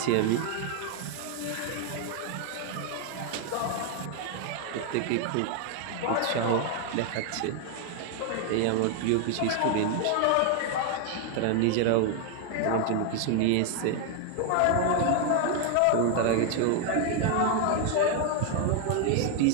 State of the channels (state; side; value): different; both; correlation 0.00